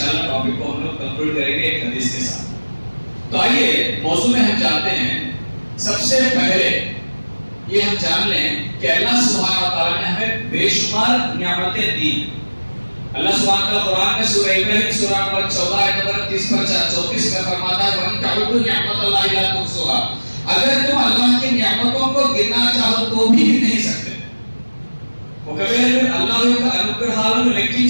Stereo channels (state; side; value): inverted; both; correlation -1.00